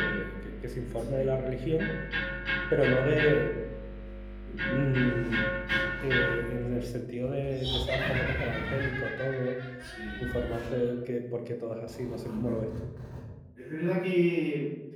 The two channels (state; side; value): identical; both; correlation 1.00